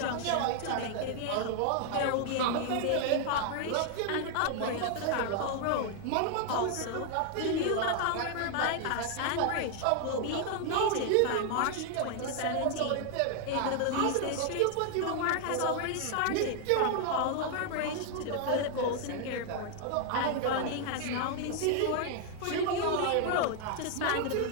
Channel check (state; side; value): different; both; correlation 0.00